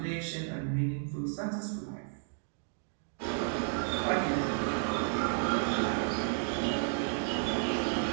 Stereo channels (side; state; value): left; silent; digital silence